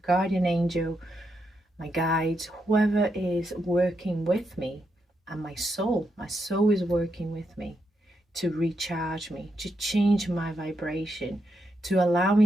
guardian angel, my guides, whoever is working with me, and my soul is working with me to recharge me, to change my vibration, to allow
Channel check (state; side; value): normal; both; correlation 0.82